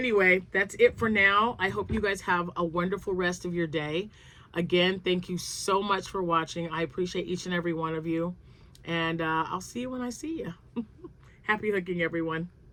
that's it for now. I hope you guys have a wonderful rest of your day. Again, thank you so much for watching. I appreciate each and every one of you. And I'll see you when I see you. Happy hooking, everyone.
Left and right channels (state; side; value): identical; both; correlation 1.00